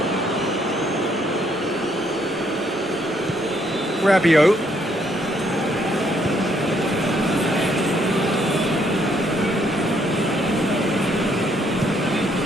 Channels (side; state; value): both; normal; correlation 0.70